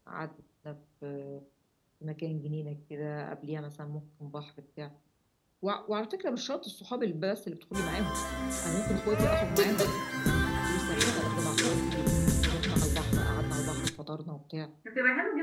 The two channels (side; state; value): both; identical; correlation 1.00